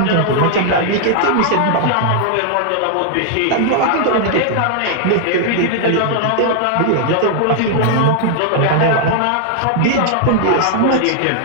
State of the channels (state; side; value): different; both; correlation 0.00